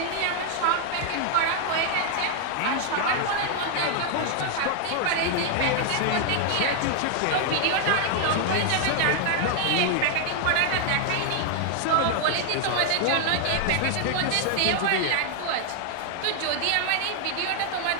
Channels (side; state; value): both; different; correlation 0.00